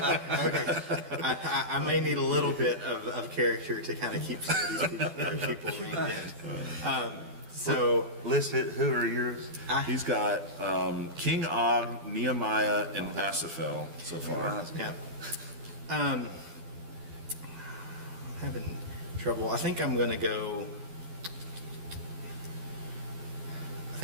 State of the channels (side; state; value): left; late; 12 ms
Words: Okay. I may need a little bit of character to kind of keep some of these people reined in. So list it. Who are yours? He's got King Og, Nehemiah, and Asapel so far. Yeah. I'm having trouble. I think I'm going to go